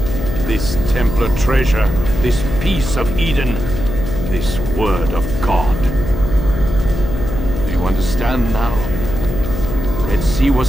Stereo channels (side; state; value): left; noise; hum, 6 dB below the sound